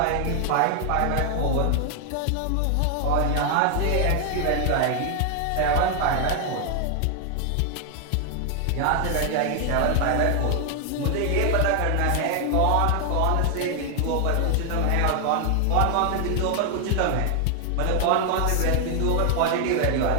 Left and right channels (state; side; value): different; both; correlation 0.00